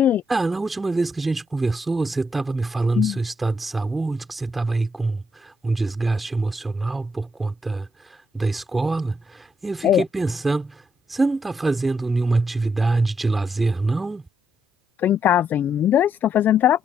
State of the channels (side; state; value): both; normal; correlation 0.78